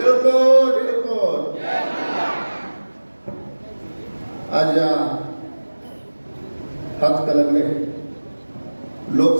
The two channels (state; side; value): inverted; both; correlation -1.00